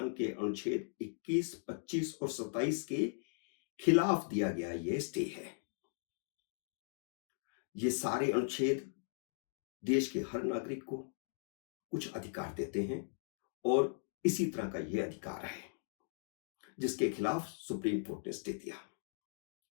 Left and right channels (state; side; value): silent; right; digital silence